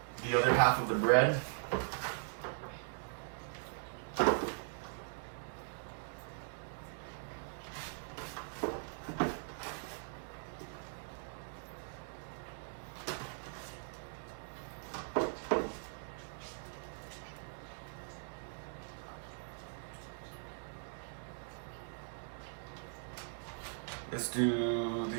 The other half of the bread. Let's do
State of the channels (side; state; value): left; silent; digital silence